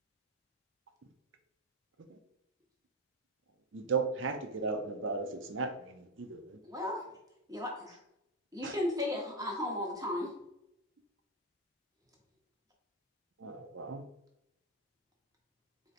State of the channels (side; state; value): both; normal; correlation 0.11